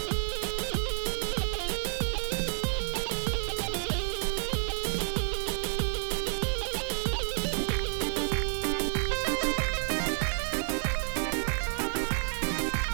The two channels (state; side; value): silent; left; digital silence